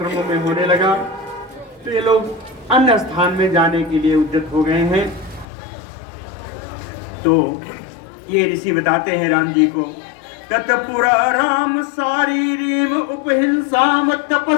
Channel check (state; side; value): drops out; right; at 5.5 s